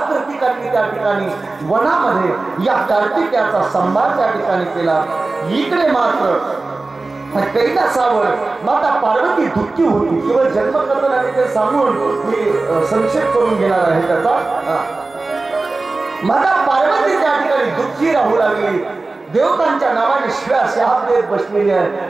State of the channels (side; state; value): left; quieter; 3.4 dB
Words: कृतिकांनी त्या ठिकाणी वनामध्ये या कार्तिकेयाचा संभार त्या ठिकाणी केला. इकडे मात्र कैलासावर माता पार्वती दुःखी होती. केवळ जन्मकथन आणि ते सांगून मी संक्षेप करून घेणार आहे त्याचा. माता पार्वती त्या ठिकाणी दुःखी राहू लागली. देवतांच्या नावाने शिव्या शाप देत बसलेली आहे.